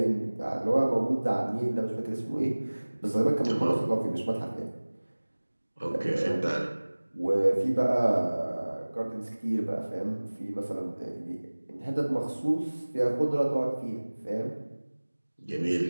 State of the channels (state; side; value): inverted; both; correlation -1.00